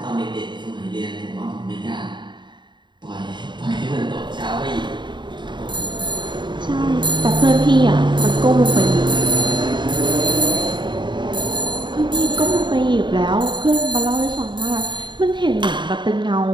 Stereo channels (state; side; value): late; left; 0.22 ms